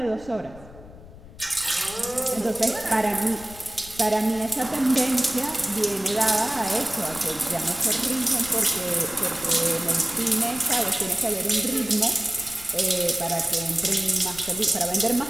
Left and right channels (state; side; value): noise; left; rumble, 18 dB below the sound